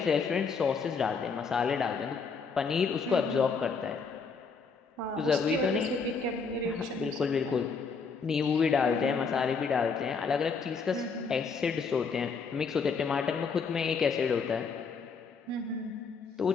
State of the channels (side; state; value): right; quieter; 5.2 dB